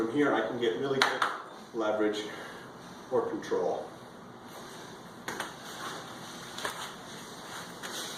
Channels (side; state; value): both; identical; correlation 1.00